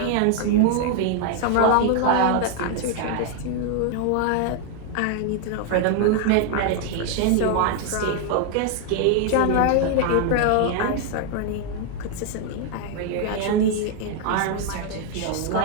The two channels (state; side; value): different; both; correlation 0.00